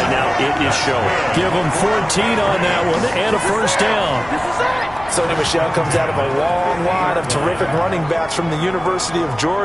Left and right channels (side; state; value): left; noise; hum, 18 dB below the sound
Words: now. It is showing. Give them 14 on that one and a first down. Sony Michel comes out of a long line of terrific running backs from the University of